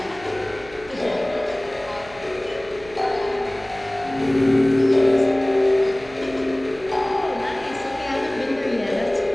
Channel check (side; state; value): right; noise; hum, 21 dB below the sound